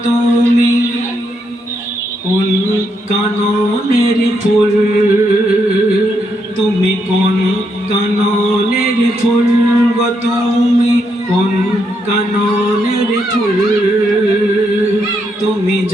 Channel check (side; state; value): both; normal; correlation 0.78